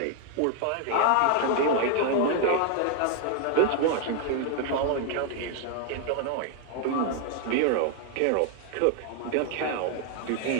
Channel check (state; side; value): different; both; correlation 0.00